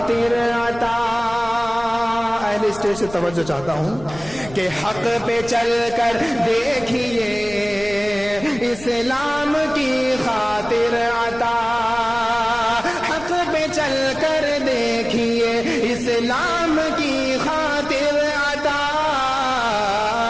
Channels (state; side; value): noise; left; rumble, 17 dB below the sound